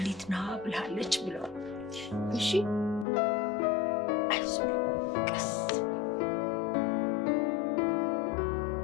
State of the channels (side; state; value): right; drops out; at 3.1 s